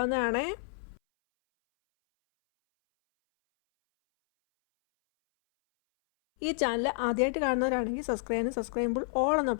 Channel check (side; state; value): right; silent; 58 dB below the other